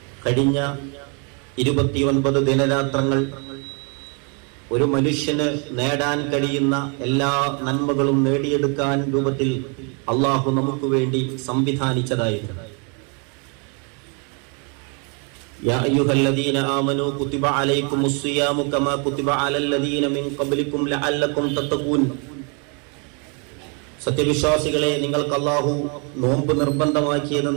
കഴിഞ്ഞ 29 ദിനരാത്രങ്ങൾ ഒരു മനുഷ്യന് നേടാൻ കഴിയുന്ന എല്ലാ നന്മകളും നേടിയെടുക്കാൻ രൂപത്തിൽ അള്ളാഹു നമുക്ക് വേണ്ടി സംവിധാനിച്ചതായിരുന്നു. യാ അയ്യുഹല്ലദീന ആമനൂ കുതിബ അലൈക്കുമുസ് സിയാമു കമാ കുതിബ അലല്ലദീന മിൻ ഖബ്ലിക്കും ലഅല്ലക്കും തത്തഖൂൻ. സത്യവിശ്വാസികളെ, നിങ്ങൾക്ക് അള്ളാഹു നോമ്പ് നിർബന്ധമാക്കിയത്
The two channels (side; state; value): left; quieter; 36.1 dB